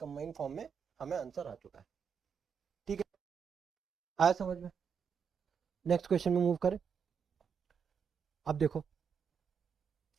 फॉर्म में हमें आंसर आ चुका है। ठीक है, आया समझ में। नेक्स्ट क्वेश्चन में मूव करें। अब देखो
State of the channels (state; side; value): quieter; left; 6.7 dB